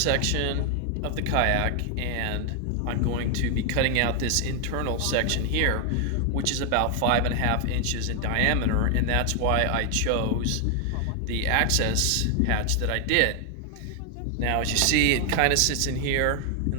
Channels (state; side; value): different; both; correlation 0.00